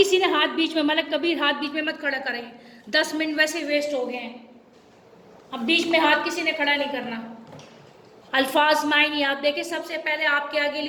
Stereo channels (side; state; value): both; identical; correlation 1.00